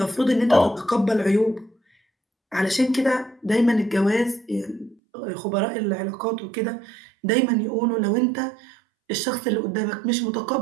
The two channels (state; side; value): drops out; left; at 5.0 s